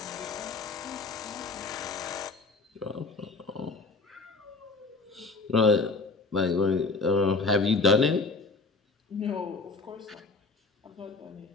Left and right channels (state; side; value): quieter; right; 3.8 dB